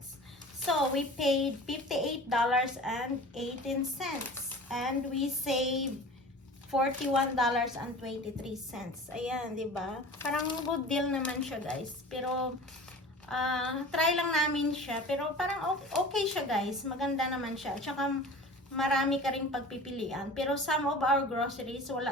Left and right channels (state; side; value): normal; both; correlation 0.39